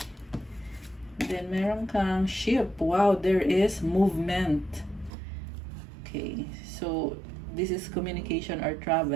Then, meron kang ship. Wow, there is movement. Okay. So, this is communication or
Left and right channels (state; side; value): drops out; left; at 5.1 s